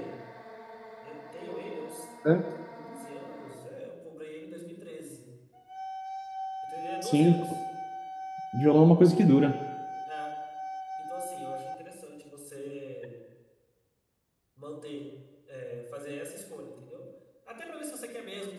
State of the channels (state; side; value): identical; both; correlation 1.00